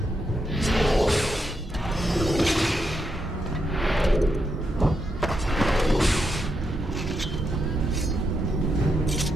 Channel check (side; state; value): both; normal; correlation 0.82